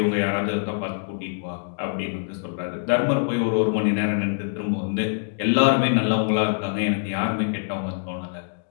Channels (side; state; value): right; silent; digital silence